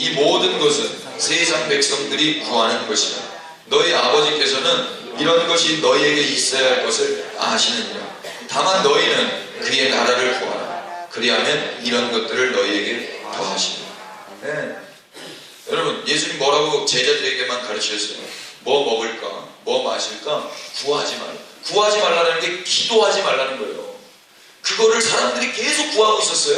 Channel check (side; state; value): both; identical; correlation 1.00